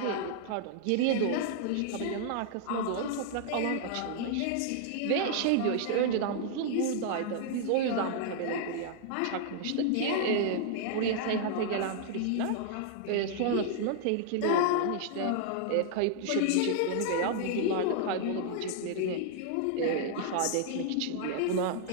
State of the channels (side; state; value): both; different; correlation -0.01